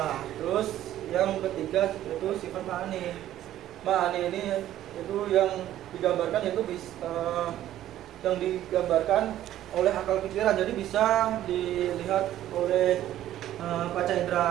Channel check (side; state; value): left; quieter; 12.8 dB